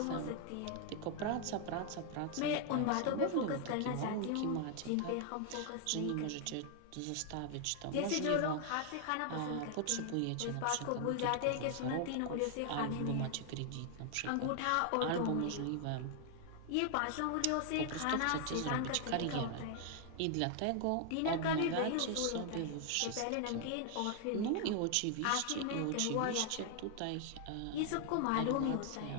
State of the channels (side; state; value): both; different; correlation 0.00